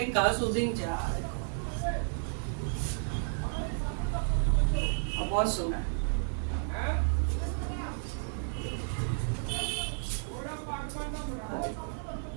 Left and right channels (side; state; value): left; silent; digital silence